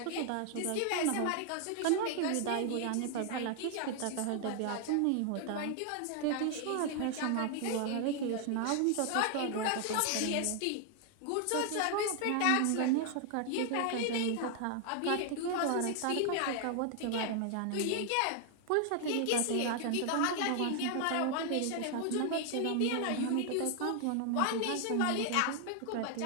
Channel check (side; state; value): both; different; correlation 0.00